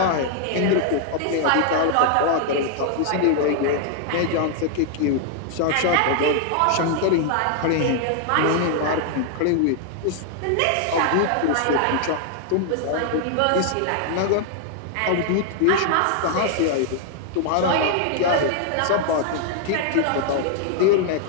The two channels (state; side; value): different; both; correlation 0.00